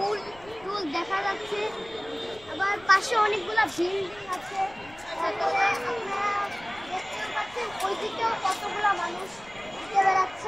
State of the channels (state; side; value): noise; left; rumble, 22 dB below the sound